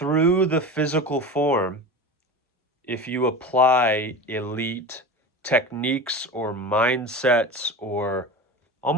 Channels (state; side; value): normal; both; correlation 0.30